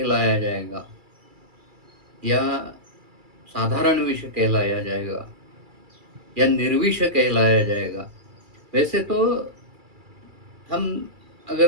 जाएगा या साधारण विष कहलाया जाएगा या निर्विष कहलाया जाएगा। वैसे तो हम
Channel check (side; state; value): left; late; 2.3 ms